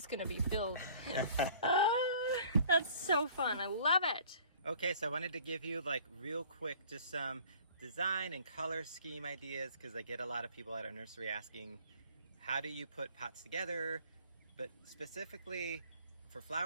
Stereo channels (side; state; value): both; inverted; correlation -0.52